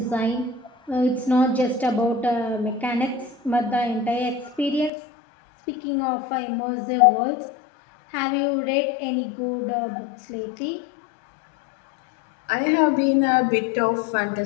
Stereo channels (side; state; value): right; drops out; at 4.9 s